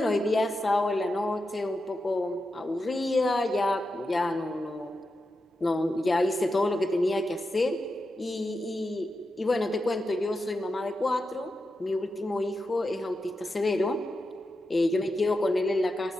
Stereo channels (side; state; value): both; normal; correlation 0.89